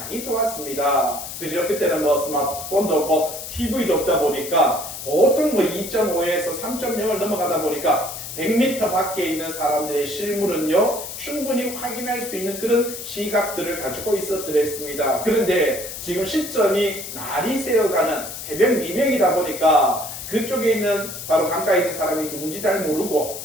좋았습니다. 그죠? 그때는 뭐 스마트폰도 없고 TV도 없다 보니까 보통 뭐 2.5에서 3.0을 넘어가다 보니까 100m 밖에 있는 사람들의 실물은요 충분히 확인할 수 있는 그런 시각들을 가지고 있었더랬습니다. 그런데 지금 시점이 날이 새어가는 새벽 미명이다 보니까 그쪽에 있는 바로 강가에 있는 사람이 누군지 잘 모르고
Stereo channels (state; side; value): noise; left; hiss, 9 dB below the sound